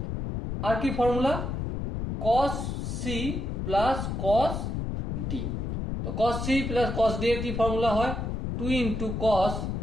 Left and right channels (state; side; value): noise; left; rumble, 3 dB below the sound